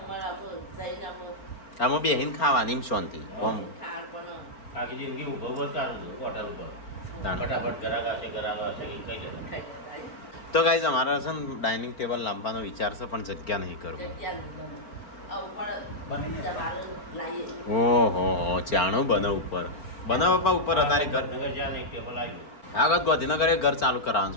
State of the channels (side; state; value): right; late; 4.4 ms